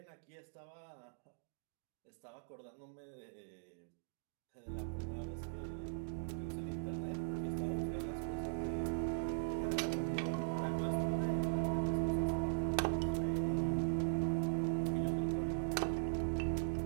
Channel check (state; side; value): silent; left; digital silence